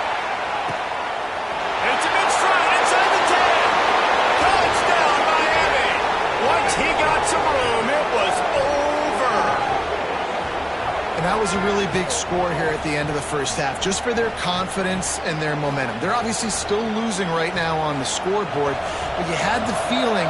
It's a big stride inside the 10. Touchdown, Miami. Once he got some room, it was over. And that was a really big score here at the end of the first half, just for their confidence and their momentum. They're obviously still losing right now on the scoreboard, but you had the feeling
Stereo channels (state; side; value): identical; both; correlation 1.00